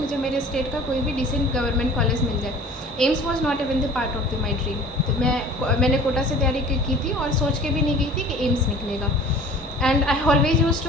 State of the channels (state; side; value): normal; both; correlation 0.44